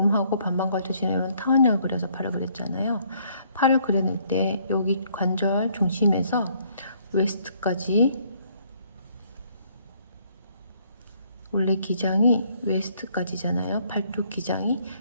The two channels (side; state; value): both; inverted; correlation -0.66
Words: 반반 걸쳐지는 이런 타원형을 그려서 팔을 그렸잖아요. 팔을 그려낼 때 여기 관절 중심에서 웨스트까지, 원래 기장이 웨스트까지잖아요. 팔뚝 기장이.